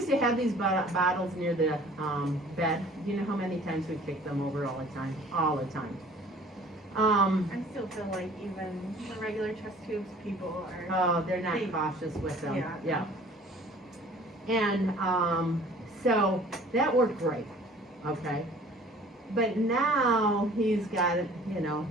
to have these bottles near the bed. You know how many times we kicked them over all the time? All the time. I still feel like even the regular chest tubes people are. Oh, they're not cautious with them. Yeah. And so that worked great, okay? But now he's got, you know,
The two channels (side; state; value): both; normal; correlation 0.50